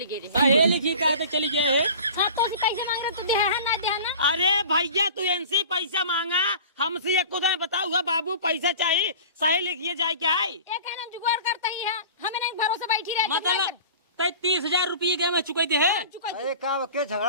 गई हे लिखी कहा तक चली गए है हाँ तो पैसे मांग रहे तो दे है ना दे है ना। अरे भैया तू इनसे पैसा मांगा हमसे एक खुदा बताऊंगा बाबू पैसा चाहिए सही लिखिए जाए क्या है ये कहना जुगाड़ करता ही है हमें नहीं भरोसे बैठी रहे मतलब तय 30,000 रुपये के मैं चुकाई दे है अरे का के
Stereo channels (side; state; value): both; inverted; correlation -0.40